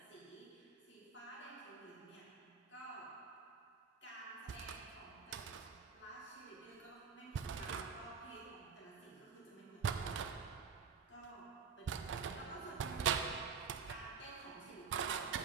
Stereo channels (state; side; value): quieter; left; 6.0 dB